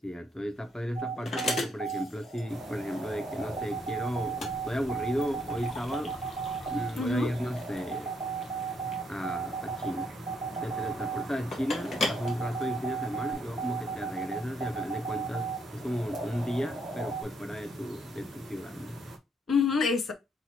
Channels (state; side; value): normal; both; correlation 0.72